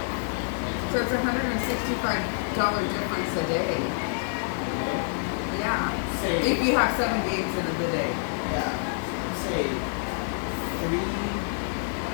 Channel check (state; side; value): silent; right; digital silence